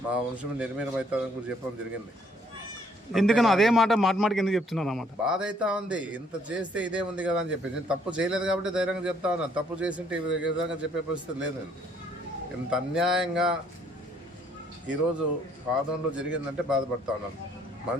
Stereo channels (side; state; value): both; normal; correlation 0.64